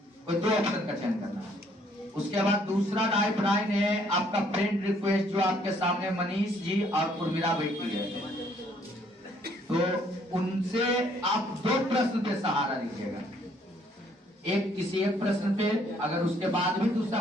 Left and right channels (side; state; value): both; normal; correlation 0.65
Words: कोई 2 ऑप्शन का चयन करना है। उसके बाद दूसरा राइट लाइन है आपका फ्रेंड रिक्वेस्ट, जो आपके सामने मनीष जी और उर्मिला बैठी है, तो उनसे आप 2 प्रश्न पे सहारा लीजिएगा। एक किसी एक प्रश्न पे, अगर उसके बाद भी दूसरा